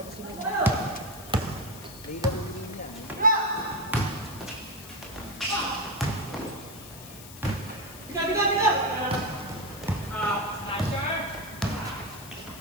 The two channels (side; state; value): left; noise; hiss, 15 dB below the sound